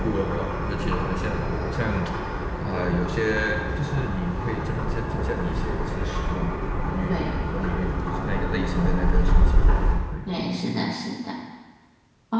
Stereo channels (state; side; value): identical; both; correlation 1.00